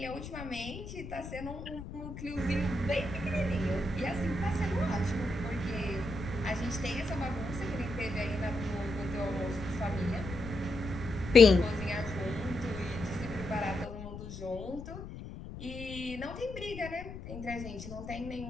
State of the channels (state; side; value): noise; left; rumble, 10 dB below the sound